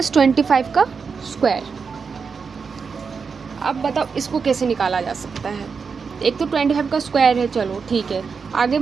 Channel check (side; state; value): left; quieter; 5.5 dB